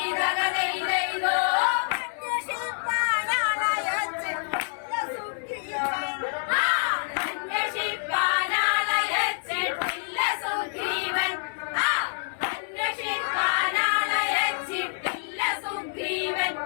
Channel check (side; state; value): right; silent; 60 dB below the other